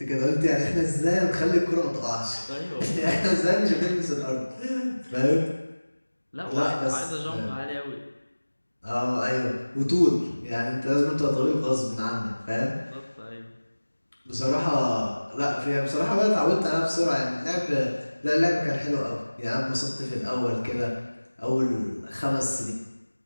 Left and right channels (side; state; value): both; inverted; correlation -1.00